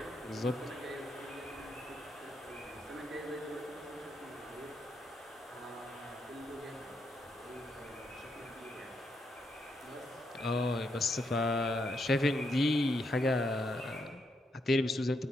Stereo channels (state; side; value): normal; both; correlation 0.79